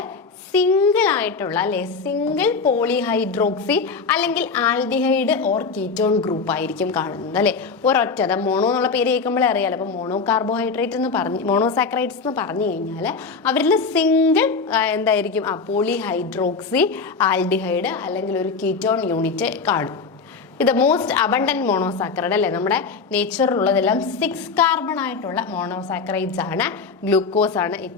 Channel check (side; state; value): right; quieter; 4.8 dB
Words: സിംഗിൾ ആയിട്ടുള്ള അല്ലേ, സിംഗിൾ പോളിഹൈഡ്രോക്സി അല്ലെങ്കിൽ ആൽഡിഹൈഡ് ഓർ കീറ്റോൺ ഗ്രൂപ്പ് ആയിരിക്കും കാണുന്നത് അല്ലേ. ഒരൊറ്റ മോണോ എന്നുള്ള പേര് കേൾക്കുമ്പോഴേ അറിയാലോ. അപ്പോൾ മോണോ കാർബോഹൈഡ്രേറ്റ് എന്ന് പറഞ്ഞ് മോണോസാക്രൈഡ്സ് എന്ന് പറഞ്ഞു കഴിഞ്ഞാൽ അവരിൽ സിംഗിൾ എന്തായിരിക്കും, പോളിഹൈഡ്രോക്സി ആൽഡിഹൈഡ് അല്ലെങ്കിൽ ഒരു കീറ്റോൺ യൂണിറ്റ് കാണും. ഇത് മോസ്റ്റ് അബണ്ടന്റ് മോണോസാക്രൈഡ് അല്ലേ. നമ്മുടെ നേച്ചറിലുള്ളതെല്ലാം 6 കാർബൺ ആയിട്ടുള്ള മോണോസാക്രൈഡ്സ് ആണ്. ഗ്ലൂക്കോസ് ആണ്